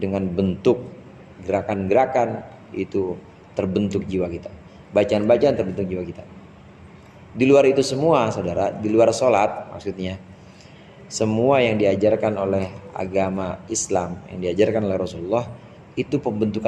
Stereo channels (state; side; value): identical; both; correlation 1.00